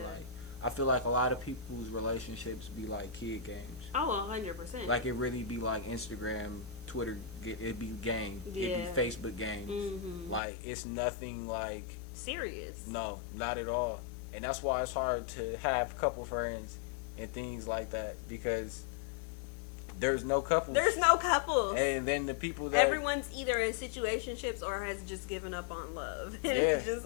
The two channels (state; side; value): drops out; right; at 10.4 s